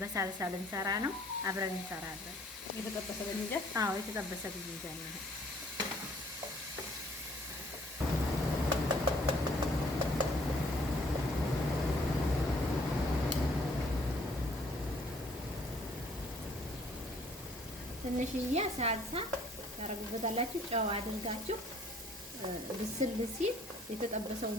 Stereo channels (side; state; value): both; normal; correlation 0.60